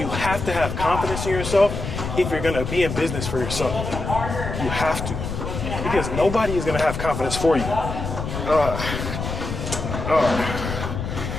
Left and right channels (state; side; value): noise; left; rumble, 5 dB below the sound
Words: have to have confidence in yourself if you're gonna be in business for yourself. You have to. Because nobody is gonna have confidence for you.